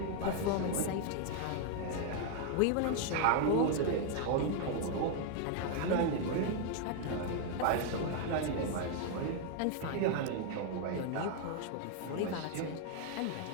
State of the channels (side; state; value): both; different; correlation 0.00